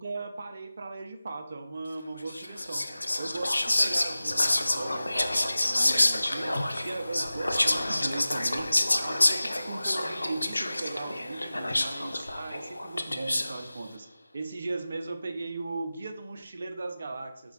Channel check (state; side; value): inverted; both; correlation -0.96